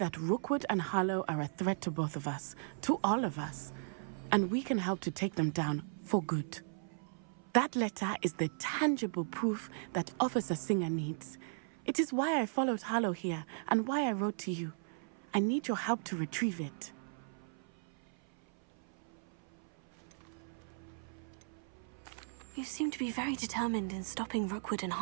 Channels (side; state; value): left; silent; 53 dB below the other